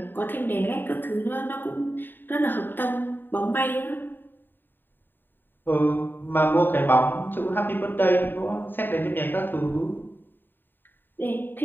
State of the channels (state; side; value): late; right; 0.094 ms